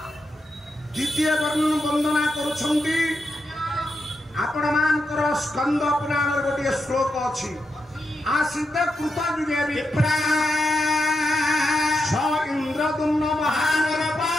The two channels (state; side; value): normal; both; correlation 0.85